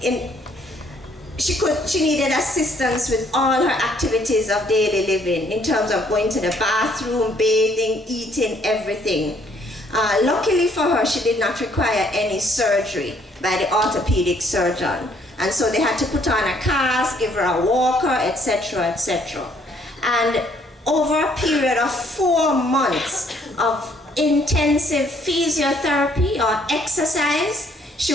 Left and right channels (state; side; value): normal; both; correlation 0.65